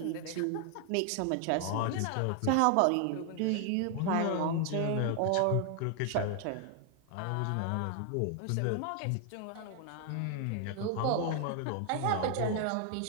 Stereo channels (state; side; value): different; both; correlation 0.00